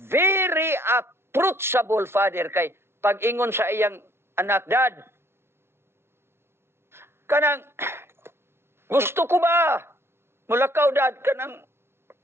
approachable father kay pag-ingon sa iyang anak, dad. Kanang gusto ko ba mulakaw dad kanang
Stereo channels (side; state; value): left; late; 0.12 ms